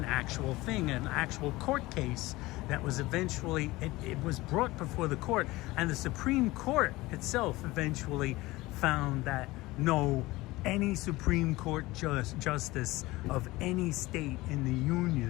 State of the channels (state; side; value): quieter; right; 19.8 dB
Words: actual thing, an actual court case that was eventually, it was brought before the court, and the Supreme Court itself eventually found that no, any Supreme Court justice of any state in the